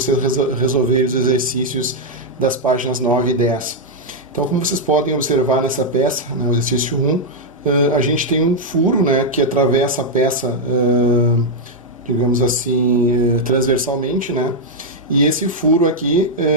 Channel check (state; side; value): normal; both; correlation -0.02